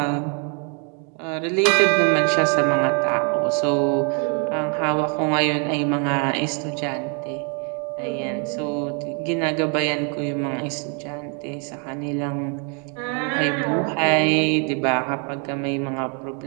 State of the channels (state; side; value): quieter; left; 38.2 dB